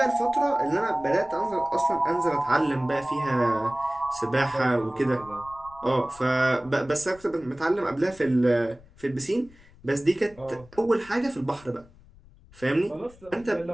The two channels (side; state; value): left; noise; rumble, 24 dB below the sound